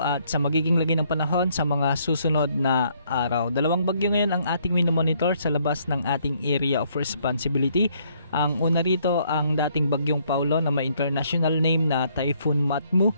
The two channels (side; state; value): both; inverted; correlation -0.68